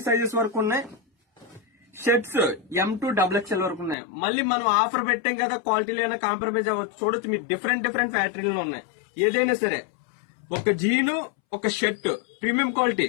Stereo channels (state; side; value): drops out; right; at 4.0 s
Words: సైజెస్ వరకు ఉన్నాయి. షర్ట్స్ M to XXL వరకు ఉన్నాయి. మళ్ళీ మనం ఆఫర్ పెట్టాం కదా, క్వాలిటీలో అయినా కాంప్రమైజ్ అవ్వచ్చు. చూడొచ్చు, మీరు డిఫరెంట్ ఫ్యాక్టరీలో ఉన్నాయి. ఏదైనా సరే ఒక జీను, ఒక షర్ట్ ప్రీమియం క్వాలిటీ,